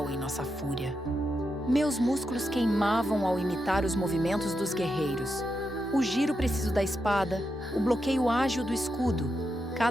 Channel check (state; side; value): normal; both; correlation 0.85